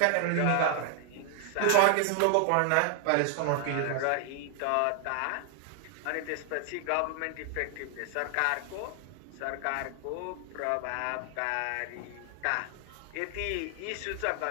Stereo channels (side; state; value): both; different; correlation 0.00